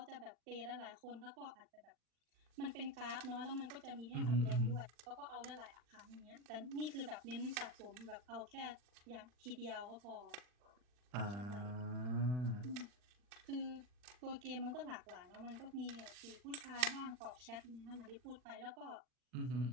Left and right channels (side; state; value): left; late; 40 ms